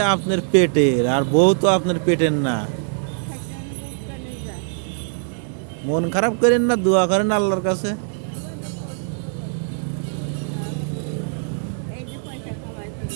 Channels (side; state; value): left; silent; digital silence